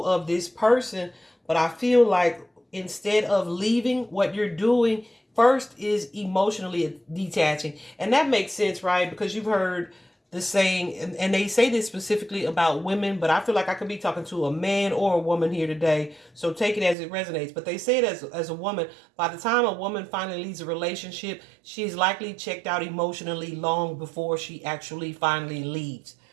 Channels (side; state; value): left; drops out; at 16.9 s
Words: of this person. But I feel like instead of leaving, what you're doing first is emotionally detaching. And that makes sense, right? Because you've heard the saying, and they say this specifically about women, but I feel like I could be talking to a man or a woman here today, so take it as it resonates. But they say it as a woman, by the time a woman finally leaves a relationship, she's likely checked out emotionally long before she actually finally leaves,